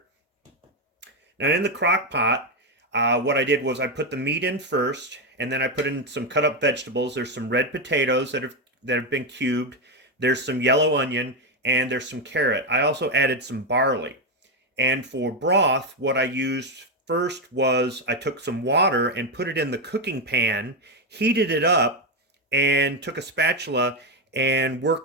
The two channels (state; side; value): normal; both; correlation 0.08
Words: Now in the crock pot, what I did was I put the meat in first, and then I put in some cut up vegetables. There's some red potatoes that have been cubed. There's some yellow onion, and there's some carrot. I also added some barley. And for broth, what I used first was I took some water and put it in the cooking pan, heated it up, and took a spatula and